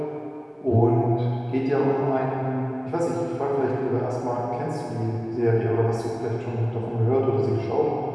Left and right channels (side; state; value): both; identical; correlation 1.00